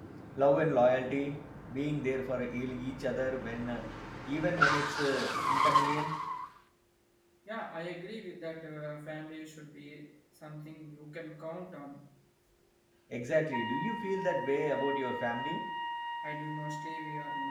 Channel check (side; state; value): both; identical; correlation 1.00